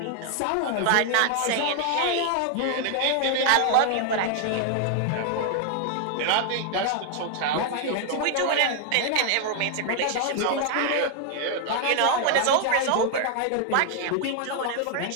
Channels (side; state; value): both; different; correlation 0.00